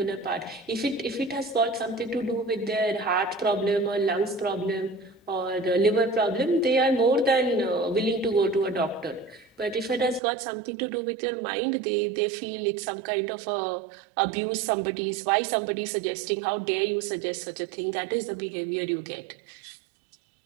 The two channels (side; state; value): left; drops out; at 10.2 s